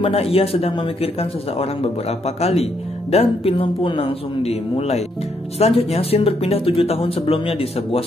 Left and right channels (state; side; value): normal; both; correlation 0.75